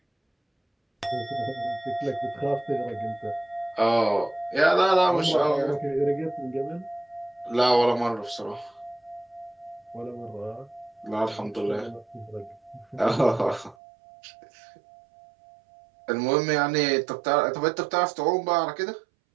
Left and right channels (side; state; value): left; drops out; at 13.8 s